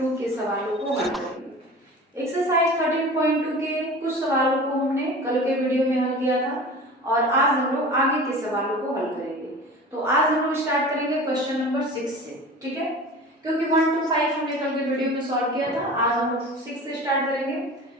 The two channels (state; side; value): normal; both; correlation 0.37